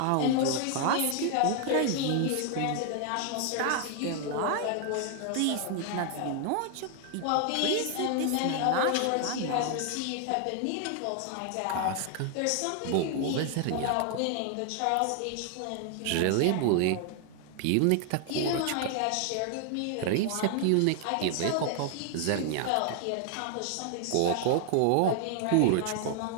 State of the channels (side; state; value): both; different; correlation 0.00